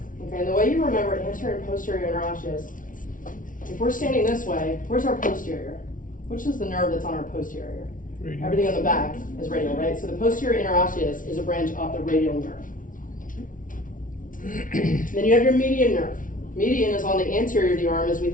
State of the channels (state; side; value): late; right; 0.38 ms